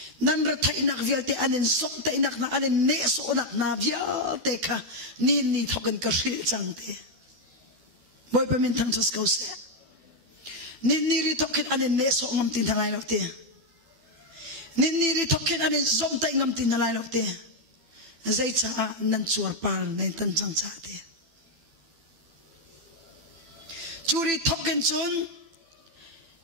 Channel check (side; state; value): left; late; 12 ms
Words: nan ra thai nak vial te anen sok te nak na anen ne so nak na vial te kha ni thoken ka ri chang te boy pa min thang chas kau se ni ri thoken anen ne so ngam tin thangai lo te ni ri thoken anen zom te ngam tin nalai lo te zai cha nan chuar par nei tan chang cha te churi thoken chun